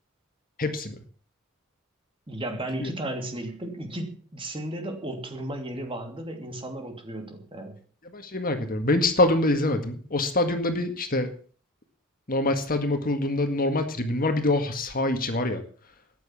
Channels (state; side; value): normal; both; correlation 0.33